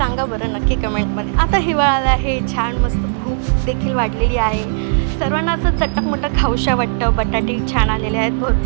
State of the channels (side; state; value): left; silent; digital silence